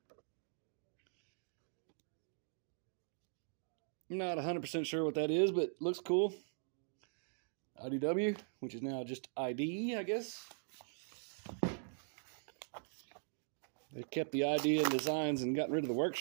I'm not 100% sure what that is, but looks cool. IDW, which is now just ID, I guess. They kept the idea and designs and got rid of the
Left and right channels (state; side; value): silent; left; digital silence